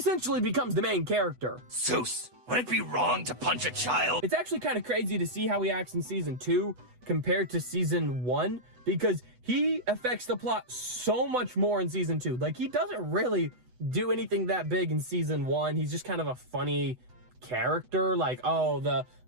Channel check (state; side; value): late; left; 8.0 ms